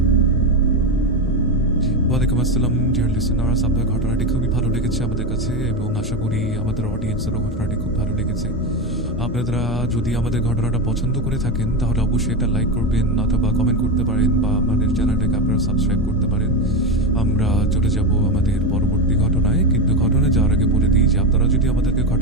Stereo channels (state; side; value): normal; both; correlation 0.15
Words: ওয়ালাইকুম আসসালাম ডিয়ার লিসেনার্স, আপনার ঘটনাটি খুবই ভালো লেগেছে আমাদের কাছে এবং আশা করি আমাদের অডিয়েন্সেরও ঘটনাটি খুব ভালো লেগেছে। আপনারা যদি আমাদের ঘটনাটা পছন্দ করে থাকেন তাহলে অবশ্যই এটা লাইক করবেন অথবা কমেন্ট করতে পারেন বা আমাদের চ্যানেলটাকে আপনারা সাবস্ক্রাইব করতে পারেন। আমরা চলে যাব আমাদের পরবর্তী ঘটনায়, কিন্তু ঘটনায় যাওয়ার আগে বলে দিই যে আপনারা যদি আমাদেরকে